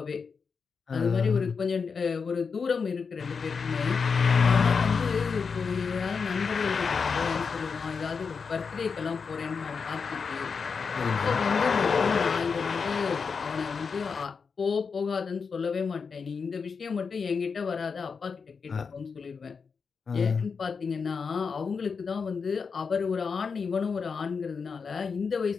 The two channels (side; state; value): right; quieter; 5.5 dB